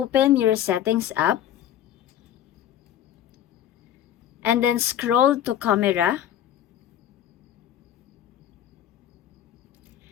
your settings app and then scroll to camera.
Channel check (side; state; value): right; quieter; 10.8 dB